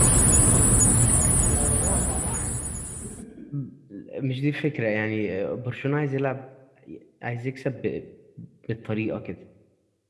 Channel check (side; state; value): both; identical; correlation 1.00